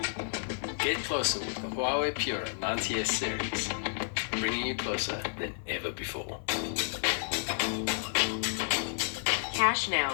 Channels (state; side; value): silent; right; 57 dB below the other